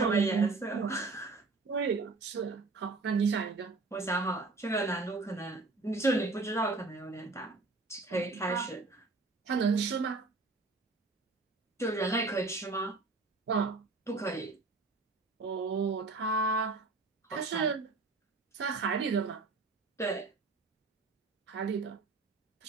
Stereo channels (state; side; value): quieter; left; 3.7 dB